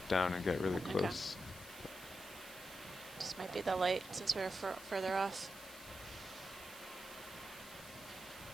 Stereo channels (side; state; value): right; noise; hiss, 16 dB below the sound